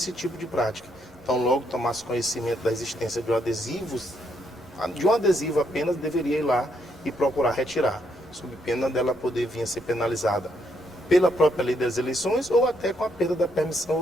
tipo de prática. Então, logo tomasse conhecimento da existência de um adesivo apenas, deveria ir lá e procurar retirar, sob pena dela poder vir a ser penalizada pela própria lei das eleições ou até com a perda da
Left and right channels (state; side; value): normal; both; correlation 0.75